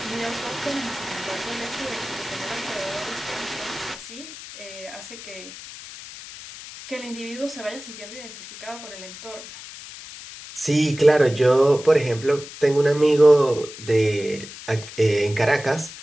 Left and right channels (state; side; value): noise; left; hiss, 14 dB below the sound